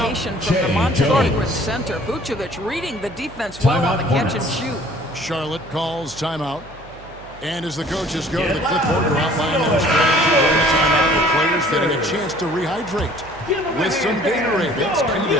from the Montenegrin center. Vucevic reading the defense well on the catch and shoot. Charlotte calls timeout. And as the coaches go to the clipboard to outline their strategy during the timeout, the players getting a chance to rehydrate with some Gatorade. It's key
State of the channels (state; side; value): noise; right; hum, 20 dB below the sound